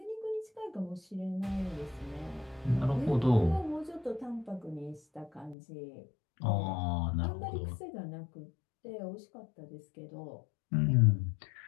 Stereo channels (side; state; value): right; drops out; at 5.6 s